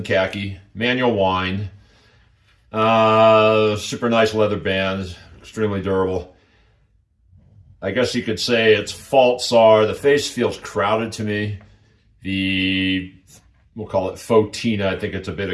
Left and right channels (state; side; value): identical; both; correlation 1.00